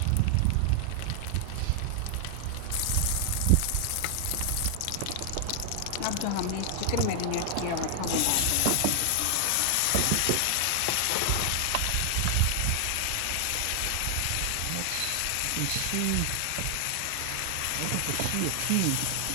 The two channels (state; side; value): different; both; correlation 0.00